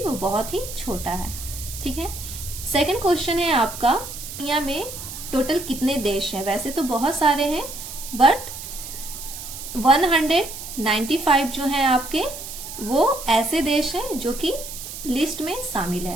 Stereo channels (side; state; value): right; noise; hiss, 10 dB below the sound